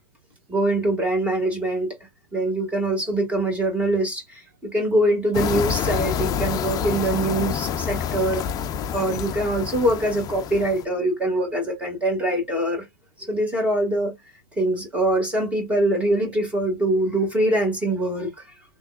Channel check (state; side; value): normal; both; correlation 0.50